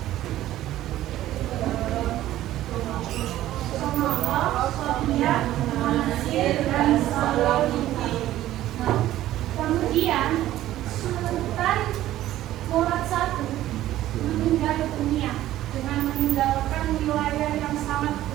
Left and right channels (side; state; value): left; quieter; 14.0 dB